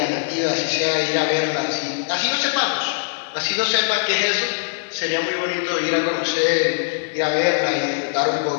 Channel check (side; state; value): right; silent; digital silence